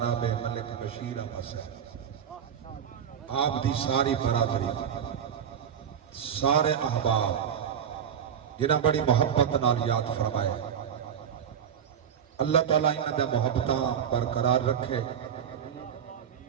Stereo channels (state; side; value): quieter; left; 8.4 dB